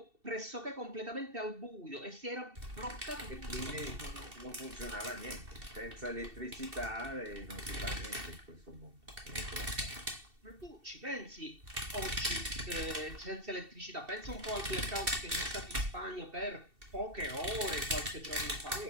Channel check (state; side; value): late; left; 2.7 ms